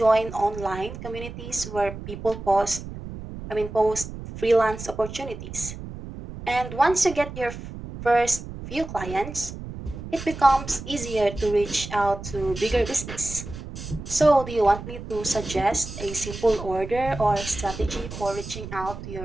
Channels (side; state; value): right; noise; rumble, 10 dB below the sound